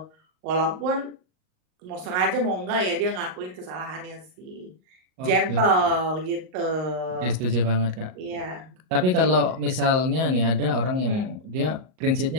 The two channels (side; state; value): left; late; 38 ms